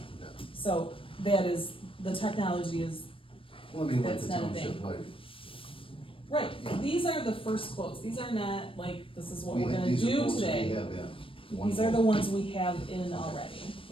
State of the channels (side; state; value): right; late; 0.26 ms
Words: yeah. So the technology is, Well, I mean, like That's the not a township, thing. like, right, Yeah. these are the first quotes, these are not like, this is what we we're had, gonna these are do quotes we today. have, yeah. One These are the quote. ones we have in already,